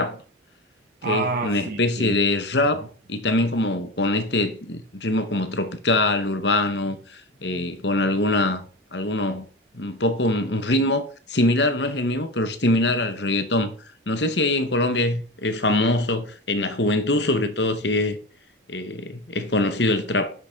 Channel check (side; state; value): both; normal; correlation 0.25